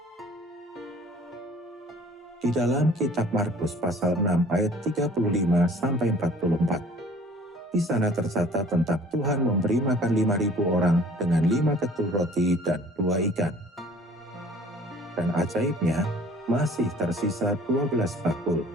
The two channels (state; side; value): normal; both; correlation 0.51